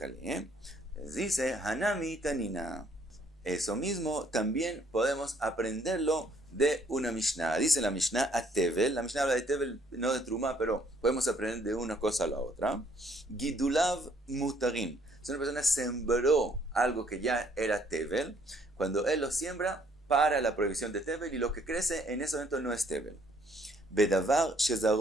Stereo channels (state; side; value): normal; both; correlation 0.64